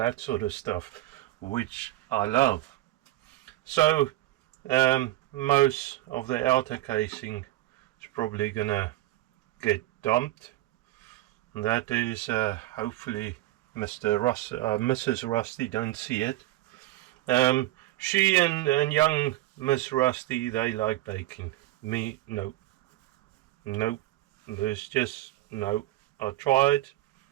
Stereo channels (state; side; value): quieter; left; 16.4 dB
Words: sort of stuff, which I love. So most of the outer casing is probably gonna get dumped, and that is hopefully Mrs. Rusty don't see it. She and young Miss Rusty, they like baking. Me, no. Nope. There's just no. I tried,